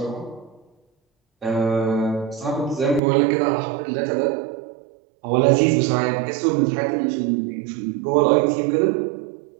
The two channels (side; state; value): left; drops out; at 3.0 s